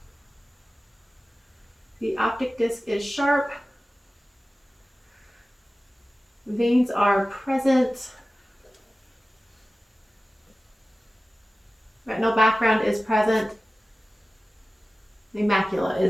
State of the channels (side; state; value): both; normal; correlation 0.96